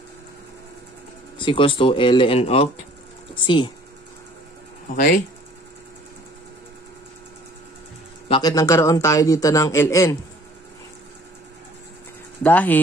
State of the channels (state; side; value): normal; both; correlation 0.54